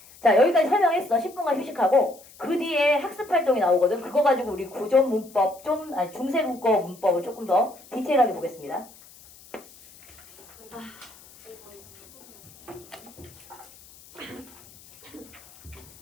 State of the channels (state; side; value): noise; left; hiss, 23 dB below the sound